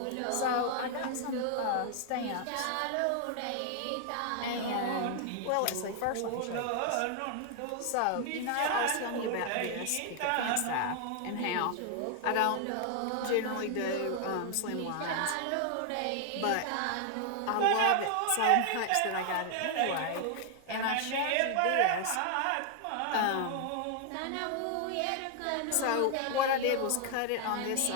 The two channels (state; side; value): different; both; correlation 0.00